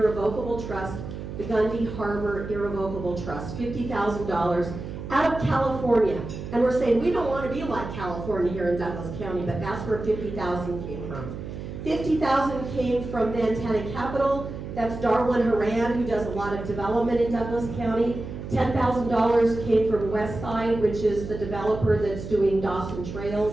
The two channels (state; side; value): noise; right; hum, 9 dB below the sound